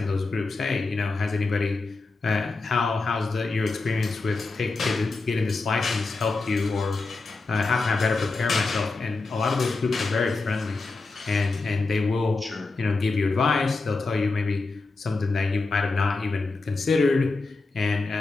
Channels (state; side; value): quieter; right; 3.7 dB